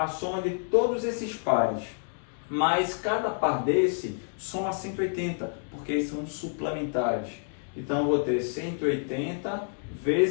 soma de todos esses pares. Mas cada par desse soma 180, porque eles são suplementares. Então eu vou ter 180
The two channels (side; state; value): right; silent; digital silence